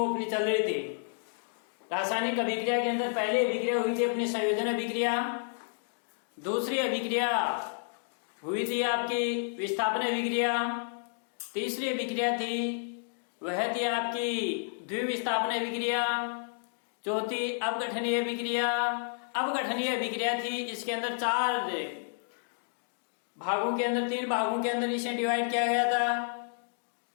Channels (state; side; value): silent; right; digital silence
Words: अपनी चल रही थी। रासायनिक अभिक्रिया के अंदर पहले अभिक्रिया हुई थी अपनी संयोजन अभिक्रिया, दूसरी अभिक्रिया हुई थी आपकी विस्थापन अभिक्रिया, तीसरी अभिक्रिया थी वह थी आपकी द्विविस्थापन अभिक्रिया, चौथी अपघटनीय अभिक्रिया। अपघटनीय अभिक्रिया थी, इसके अंदर चार भागों के अंदर, तीन भागों के अंदर इसे डिवाइड किया गया था।